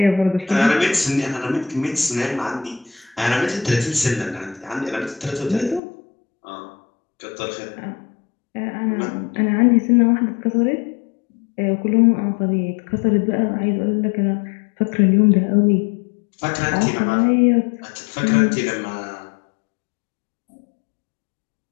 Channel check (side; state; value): right; drops out; at 5.8 s